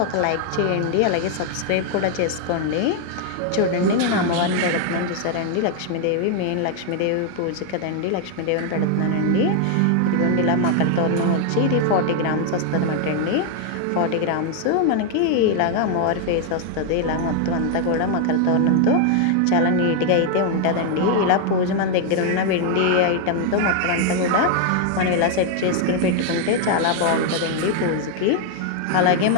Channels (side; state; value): both; different; correlation 0.00